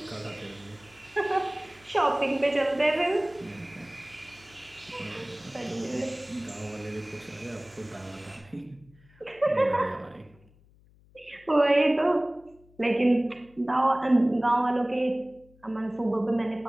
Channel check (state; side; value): noise; left; hum, 28 dB below the sound